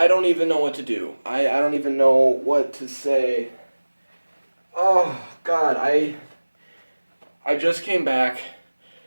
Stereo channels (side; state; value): both; inverted; correlation -1.00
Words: even know what to do. I don't even know what to say. Oh, God, I just came back